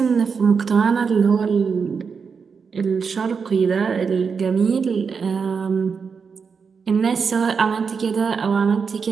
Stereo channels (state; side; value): quieter; left; 5.7 dB